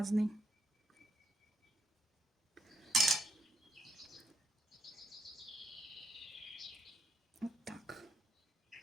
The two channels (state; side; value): normal; both; correlation 0.78